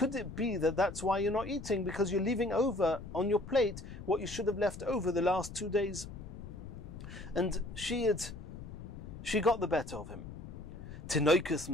it be that that's why you're not eating, because you're leaving over on your plate what you should have left over the last 2 days? And she got the better of him. Tinoikus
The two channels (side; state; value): left; noise; rumble, 11 dB below the sound